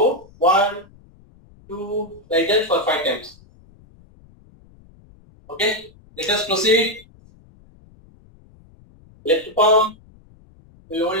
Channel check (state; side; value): noise; left; rumble, 27 dB below the sound